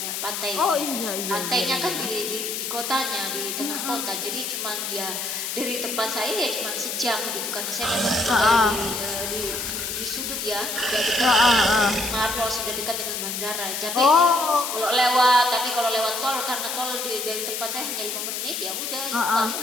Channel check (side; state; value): left; noise; hiss, 4 dB below the sound